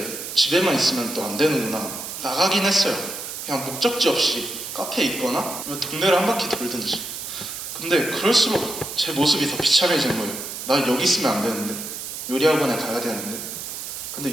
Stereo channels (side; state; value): right; noise; hiss, 8 dB below the sound